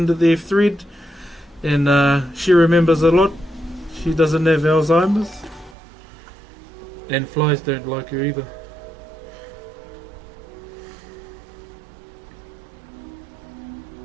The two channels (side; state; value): left; drops out; at 5.8 s